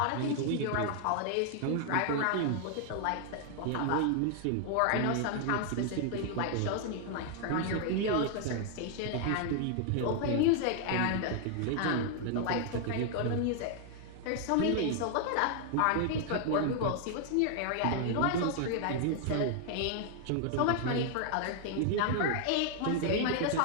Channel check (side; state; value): both; different; correlation 0.00